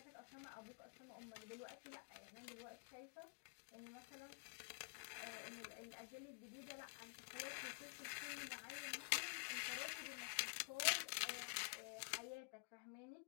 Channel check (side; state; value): right; quieter; 39.1 dB